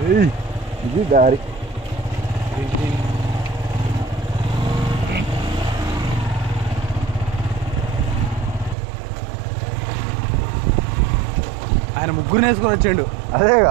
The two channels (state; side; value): drops out; left; at 8.8 s